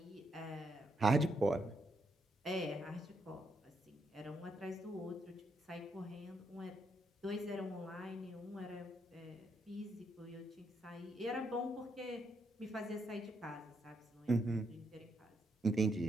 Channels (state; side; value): normal; both; correlation 0.78